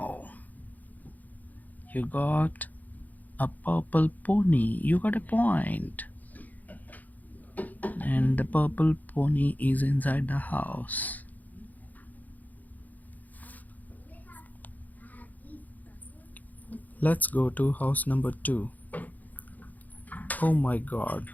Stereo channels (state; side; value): late; right; 0.081 ms